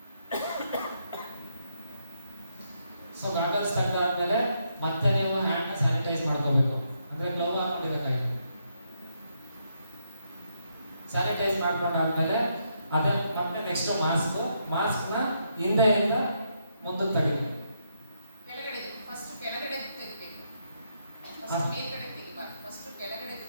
ಸೊ ಗಾಗಲ್ಸ್ ತೆಗೆದಾದ್ಮೇಲೆ ಮತ್ತೆ ನೀವು ಹ್ಯಾಂಡ್ನ ಸ್ಯಾನಿಟೈಸ್ ಮಾಡ್ಕೋಬೇಕು, ಅಂದ್ರೆ ಗ್ಲೌ ಹಾಕೊಂಡಿರೋ ಕೈ. ಸ್ಯಾನಿಟೈಸ್ ಮಾಡ್ಕೊಂಡಾದ್ಮೇಲೆ ಅದೇ ಮತ್ತೆ ನೆಕ್ಸ್ಟ್ ಮಾಸ್ಕ್ನ ಹಿಂದೆಯಿಂದ ಮುಂದಕ್ಕೆ ತೆಗಿಬೇಕು. ಕೆಳಗಡೆ ಫಸ್ಟ್ ಕೆಳಗಡೆ ತೆಗಿಬೇಕು. ಹಾ. ಫಸ್ಟ್ ಮೇಲ್ಗಡೆ ತೆಗಿಬಾರ್ದು. ಫಸ್ಟ್ ಕೆಳಗಡೆ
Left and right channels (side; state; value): both; inverted; correlation -0.78